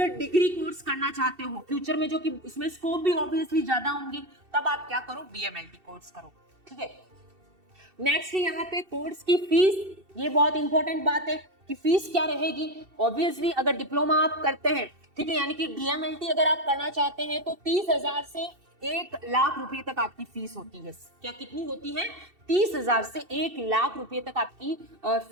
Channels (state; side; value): late; left; 2.7 ms